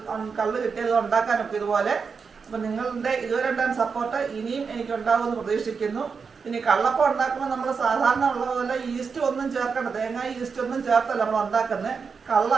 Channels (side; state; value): left; quieter; 5.5 dB